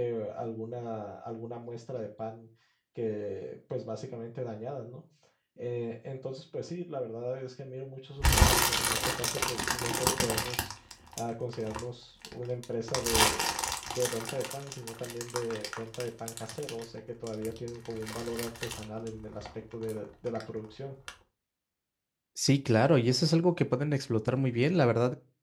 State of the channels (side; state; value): both; identical; correlation 1.00